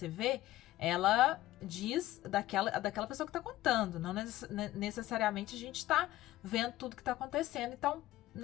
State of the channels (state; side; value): quieter; right; 15.7 dB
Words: vê, ela diz daquela pessoa que está contando. Não necessariamente a gente está vendo tudo que está acontecendo. Então,